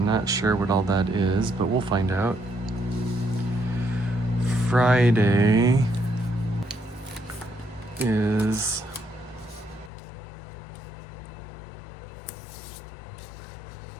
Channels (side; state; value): right; drops out; at 9.9 s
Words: not sure what all that is, but we'll find out. Friday is